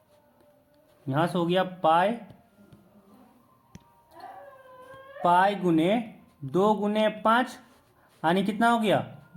यहाँ से हो गया पाई गुने 2 गुने 5 यानी कितना हो गया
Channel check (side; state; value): both; identical; correlation 1.00